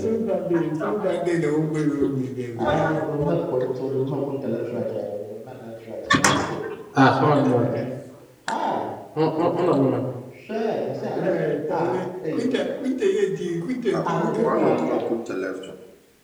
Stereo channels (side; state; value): both; identical; correlation 1.00